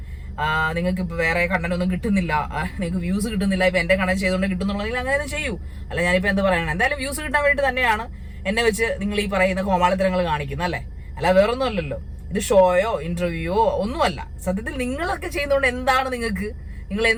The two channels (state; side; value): identical; both; correlation 1.00